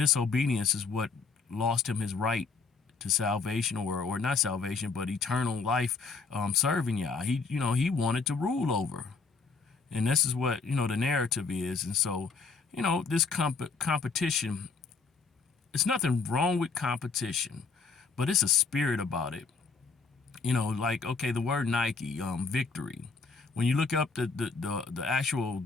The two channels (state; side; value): quieter; right; 4.6 dB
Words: is what lost him his right to salvation, or not salvation, but eternal life, serving Yah. He wanted to rule over. And this is what, the narrative is. And so, this competition, it's nothing wrong with competition, but it's a spirit about it. Okay, the word Nike, victory. When you look up the actual